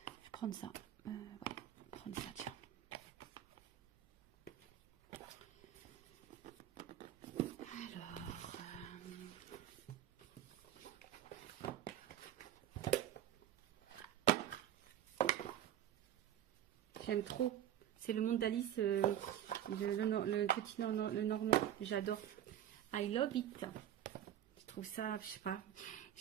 prendre ça. Ouais, prendre ça, tiens. J'aime trop. C'est le monde d'Alice, le petit le normand. J'adore. I love it. Je trouve ça, je sais pas.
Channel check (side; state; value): left; quieter; 11.1 dB